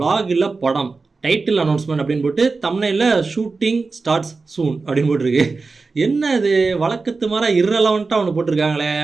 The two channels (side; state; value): left; quieter; 4.1 dB